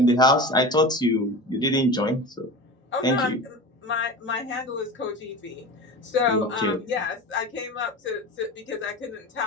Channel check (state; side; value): normal; both; correlation 0.31